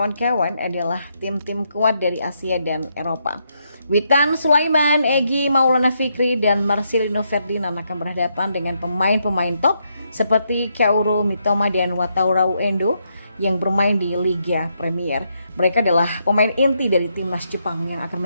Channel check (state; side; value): inverted; both; correlation -0.78